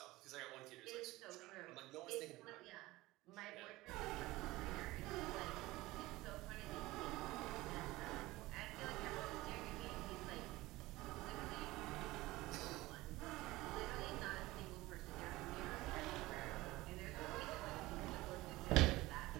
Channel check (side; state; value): left; quieter; 19.2 dB